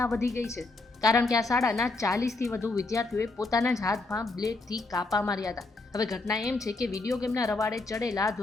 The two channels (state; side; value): quieter; right; 3.3 dB